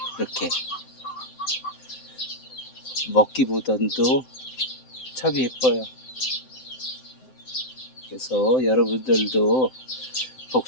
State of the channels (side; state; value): right; late; 7.8 ms